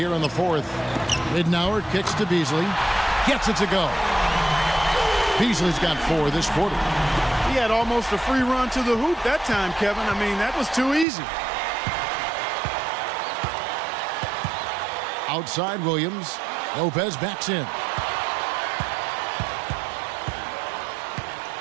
in the fourth. Ridnour kicks to Beasley. Gets it to go. Beasley's got 4 this quarter. He had almost a free run to the hoop that time, Kevin. I mean, that was too easy. Outside Williams. Lopez backs in.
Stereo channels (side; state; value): left; drops out; at 11.1 s